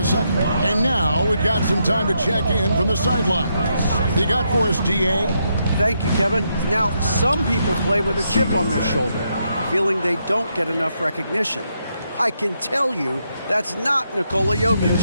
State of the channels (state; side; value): inverted; both; correlation -0.79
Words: second. And now we've got some time to check in from the sidelines. You got for us, D.A.? Thank you, Kevin. Now, some people play with a chip on their shoulder, feeling they don't get enough recognition. I can tell you that's not Nikola